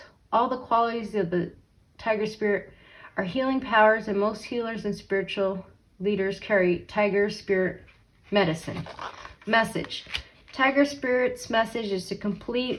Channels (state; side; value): identical; both; correlation 1.00